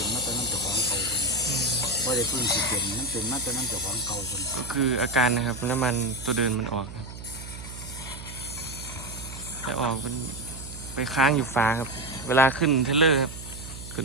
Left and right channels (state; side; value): noise; right; hum, 12 dB below the sound